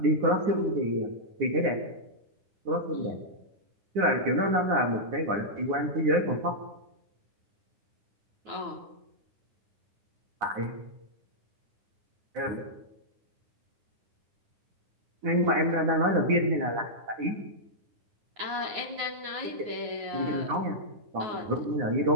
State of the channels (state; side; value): late; left; 9.7 ms